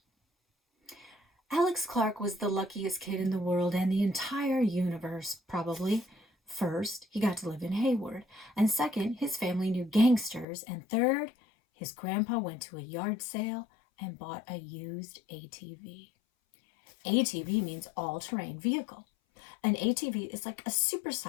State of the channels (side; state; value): right; drops out; at 10.5 s